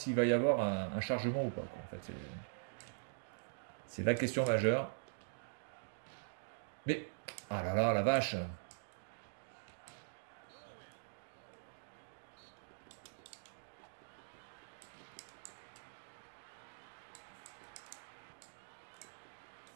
va y avoir un chargement ou pas, quoi. En fait, c'est la question majeure. Mais... Ah là là, la vache!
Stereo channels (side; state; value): left; silent; digital silence